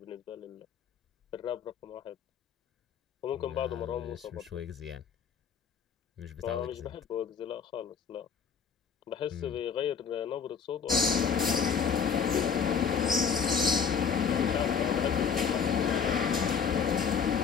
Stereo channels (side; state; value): right; quieter; 6.7 dB